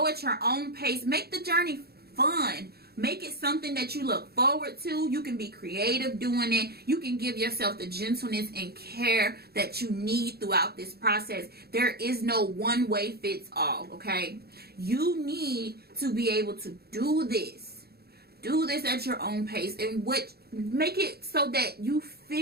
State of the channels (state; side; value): late; left; 0.46 ms